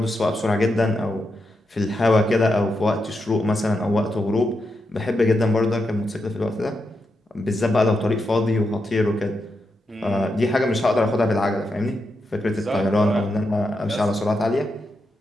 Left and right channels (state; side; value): normal; both; correlation 0.85